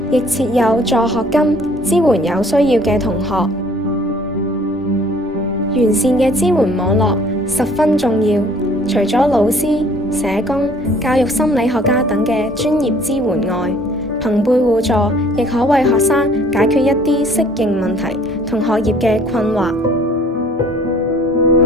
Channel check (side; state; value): both; normal; correlation 0.56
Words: 亦設有助學金，支援有需要嘅同學。完善嘅支援網絡十分重要，除咗老師、社工、教育心理學家等嘅專業支援外，朋輩互助亦可為學生解決一啲適應問題同學業嘅困惑。